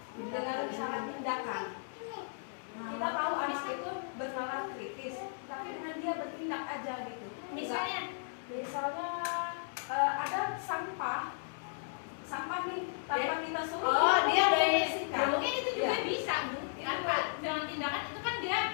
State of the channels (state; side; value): silent; right; digital silence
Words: Dengan syarat tindakan. Kita tahu anak itu bernalar kritis, tapi dengan dia bertindak aja gitu. Misalnya ada sampah nih tanpa kita suruh. Oh, dia dari bersihkan. mungkin itu juga Iya. bisa, Bu. Tanpa dengan tindakan itu kan dia